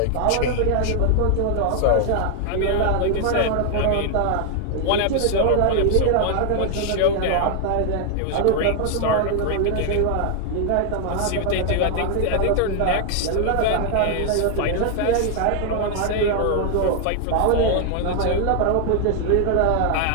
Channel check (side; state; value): both; different; correlation 0.00